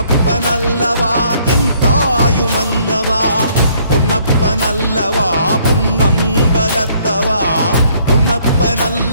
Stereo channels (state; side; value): inverted; both; correlation -0.64